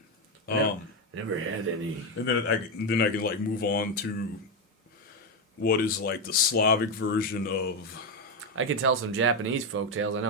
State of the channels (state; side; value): normal; both; correlation 0.08